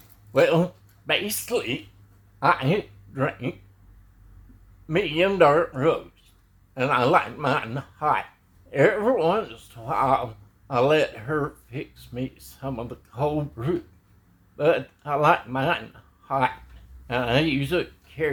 well, basically, I drink medium dark roast, and I like mine hot. Every once in a while, I let her fix me some of the cold brew, but I like mine hot, and I use a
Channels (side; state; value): both; identical; correlation 1.00